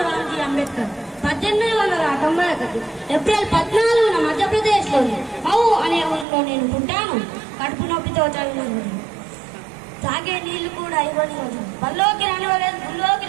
రామ్జీ అంబేద్కర్ 1891 ఏప్రిల్ 14న మధ్యప్రదేశ్లోని మౌ అనే ఊరిలో నేను పుట్టాను. కడుపు నొప్పితో తోచని తాగే నీళ్లు కూడా ఇవ్వని రోజు. బల్లోకి రానివ్వలేదు, గుళ్ళోకి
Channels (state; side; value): drops out; left; at 6.2 s